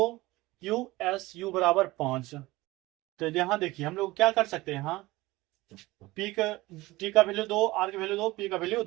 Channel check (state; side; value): quieter; left; 19.7 dB